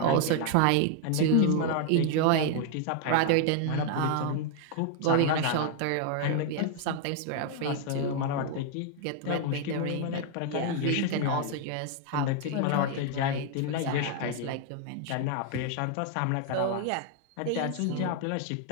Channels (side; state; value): both; different; correlation 0.00